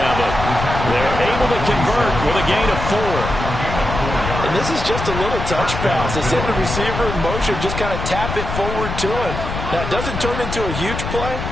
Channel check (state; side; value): noise; left; rumble, 5 dB below the sound